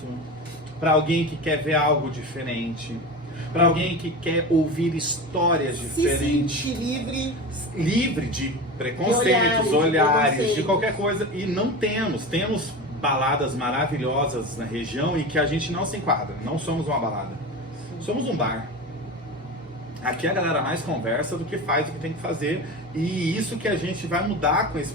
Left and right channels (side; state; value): both; normal; correlation 0.27